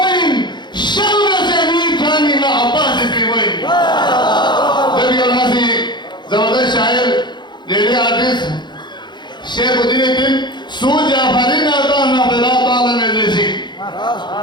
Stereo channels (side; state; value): right; late; 0.22 ms